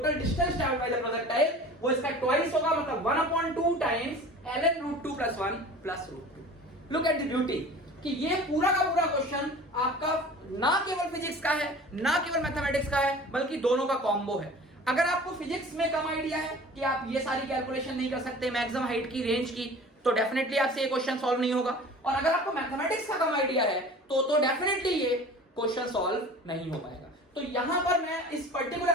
distance travelled by the projectile, वो इसका ट्वाइस होगा, मतलब 1/2 times ln √2 plus 1 plus √2। Look at the beauty कि ये पूरा का पूरा क्वेश्चन आपका ना केवल फिजिक्स का है, ना केवल मैथमेटिक्स का है, बल्कि दोनों का कॉम्बो है। अगर आपको फिजिक्स में कम आइडिया है कि आप ये सारी कैलकुलेशन नहीं कर सकते, मैक्सिमम हाइट की, रेंज की, तो डेफिनेटली आपसे ये क्वेश्चन सॉल्व नहीं होगा, और अगर आपको मैथमेटिक्स का कम आइडिया है तो डेफिनेटली ये क्वेश्चन सॉल्व नहीं हो पाएगा। तो यहां पर मैं इस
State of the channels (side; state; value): both; normal; correlation 0.42